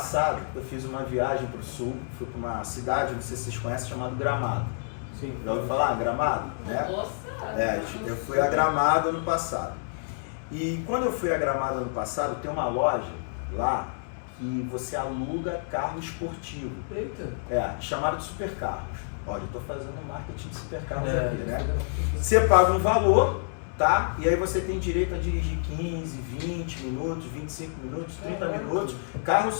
eu fiz uma viagem para o sul, fui para uma cidade, não sei se vocês conhecem, chamada Gramado. Sim. Já ouviu falar? Gramado? Né? Nossa! Eu fui a Gramado ano passado. E quando eu fui a Gramado ano passado, tem uma loja lá que você aluga carro esportivo. Eita. Chamado de supercarros. Olha, eu estou fazendo marketing de supercarros aqui, né? Você paga um valor, tá? E aí você tem direito a dirigir 15, 20 minutos, 25 minutos, 30 minutos. Carros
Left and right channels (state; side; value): silent; right; digital silence